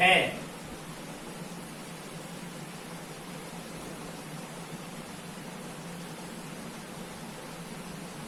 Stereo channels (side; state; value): both; identical; correlation 1.00